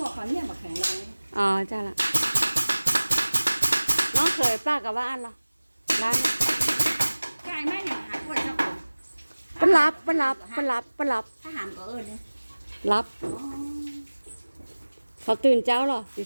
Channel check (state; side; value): inverted; both; correlation -1.00